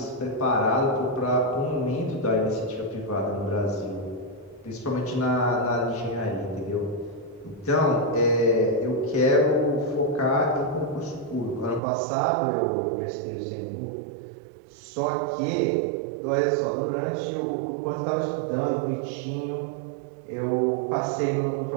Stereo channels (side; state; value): left; drops out; at 11.8 s